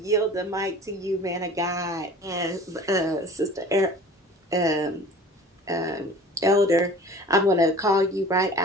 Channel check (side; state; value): both; normal; correlation 0.44